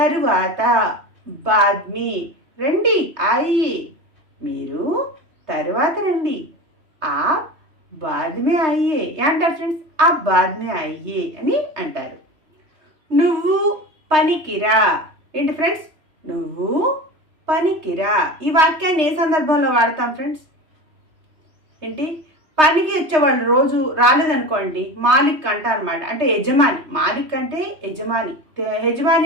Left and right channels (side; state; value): left; late; 3.3 ms